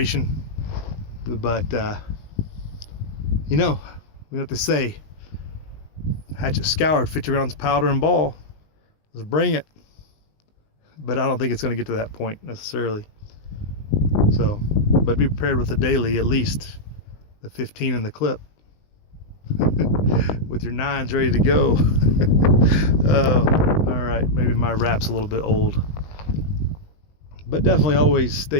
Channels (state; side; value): late; right; 20 ms